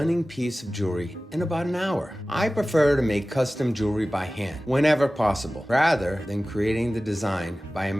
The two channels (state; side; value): normal; both; correlation 0.97